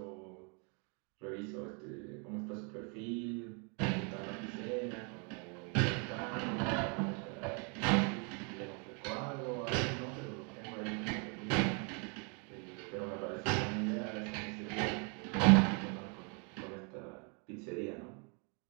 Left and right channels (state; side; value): quieter; left; 35.7 dB